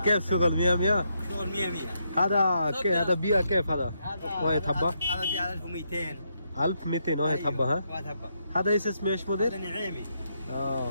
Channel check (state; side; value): inverted; both; correlation -0.79